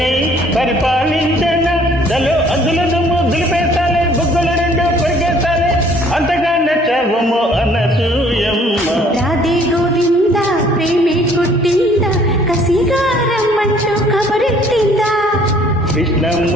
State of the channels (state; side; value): normal; both; correlation 0.58